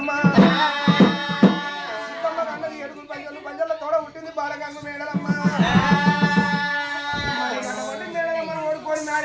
సిద్ధమ్మ కన్నది ఏడుగురు పంజలు, పంజల్లో తోడ పుట్టింది బాలగంగు మేడలమ్మ. మేడలమ్మను ఓడుకొని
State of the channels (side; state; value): both; identical; correlation 1.00